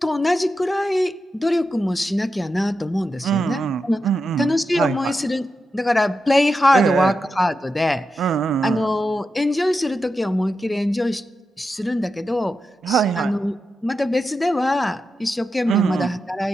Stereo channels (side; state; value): both; normal; correlation 0.89